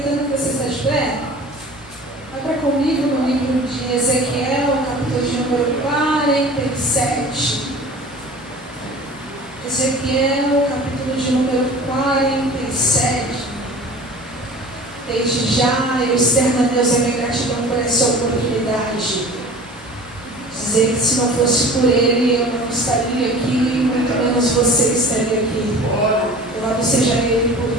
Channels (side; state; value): both; normal; correlation 0.42